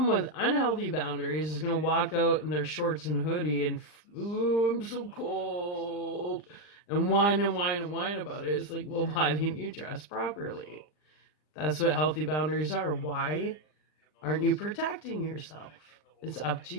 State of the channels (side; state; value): right; late; 39 ms